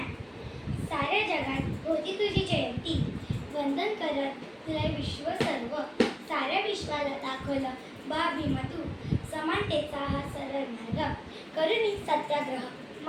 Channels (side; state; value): both; identical; correlation 1.00